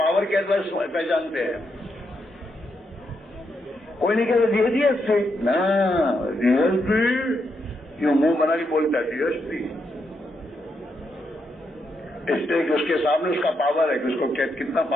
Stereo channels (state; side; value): normal; both; correlation 0.81